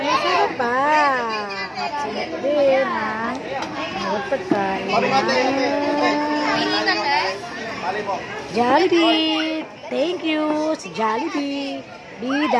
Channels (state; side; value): identical; both; correlation 1.00